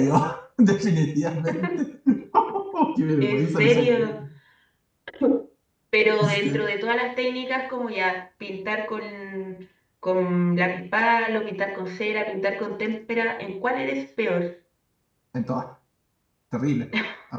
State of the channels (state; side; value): identical; both; correlation 1.00